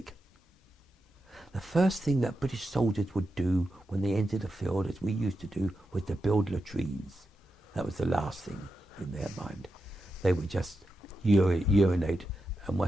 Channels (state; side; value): normal; both; correlation 0.88